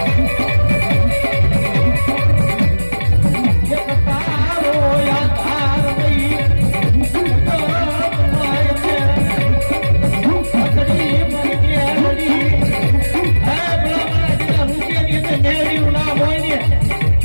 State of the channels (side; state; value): both; inverted; correlation -1.00